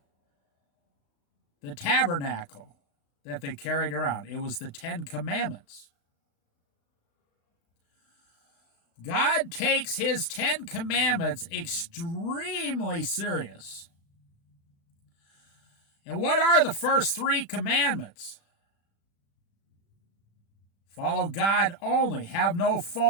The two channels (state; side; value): late; right; 36 ms